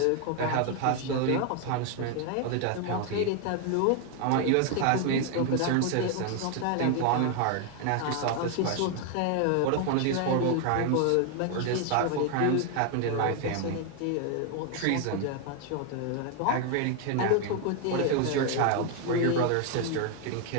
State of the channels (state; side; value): different; both; correlation 0.01